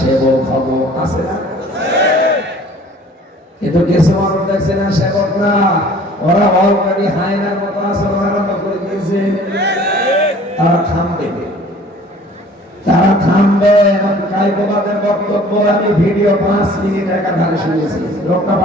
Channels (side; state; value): both; normal; correlation 0.50